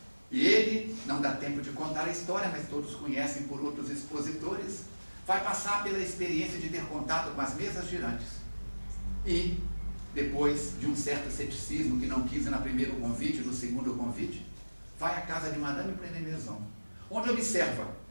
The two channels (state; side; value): inverted; both; correlation -1.00